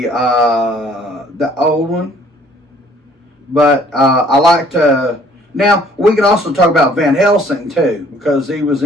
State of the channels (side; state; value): both; normal; correlation 0.58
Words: old one, but I liked. Now we could also talk about Van Helsing too, because he was